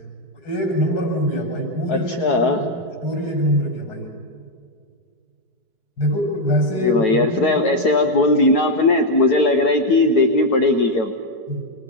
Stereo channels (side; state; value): right; late; 4.7 ms